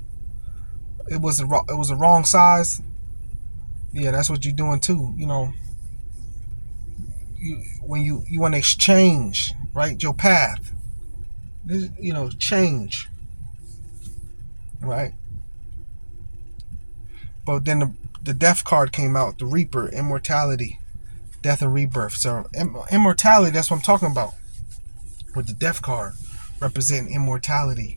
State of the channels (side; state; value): both; inverted; correlation -1.00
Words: It was a wrong size. Yeah, that's what you're doing too. When you want to exchange, right, your path. Change, right? But then the death card came out, the Reaper, immortality, death and rebirth. So immortality, that's what I'm talking about. With the death card representing immortality,